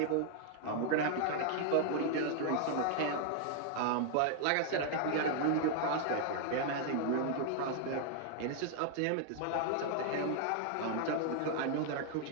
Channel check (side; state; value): both; different; correlation 0.00